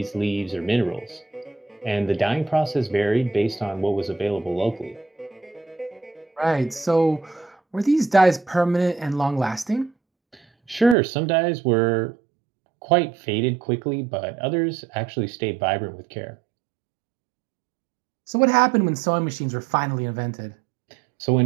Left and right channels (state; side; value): drops out; left; at 11.0 s